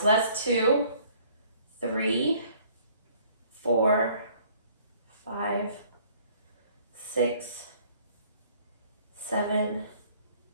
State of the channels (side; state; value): both; inverted; correlation -0.58